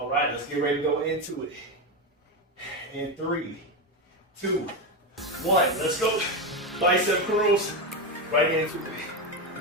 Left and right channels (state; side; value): normal; both; correlation 0.13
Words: right, let's get ready to go into it. In 3, 2, 1, let's go. Bicep curls, right into